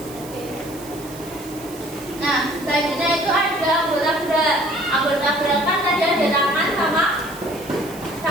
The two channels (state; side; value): noise; right; hiss, 17 dB below the sound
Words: Nah, selanjutnya itu ada anggota gerak. Anggota gerak kan tadi ada tangan sama